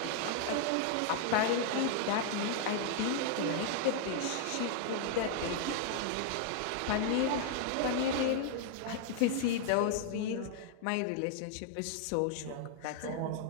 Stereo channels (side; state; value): both; different; correlation 0.00